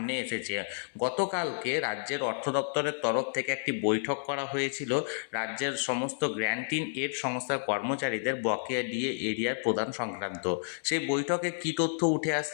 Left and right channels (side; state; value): right; silent; 57 dB below the other